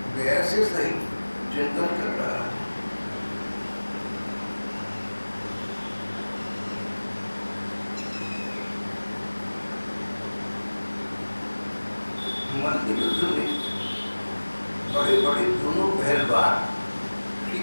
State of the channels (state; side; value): inverted; both; correlation -1.00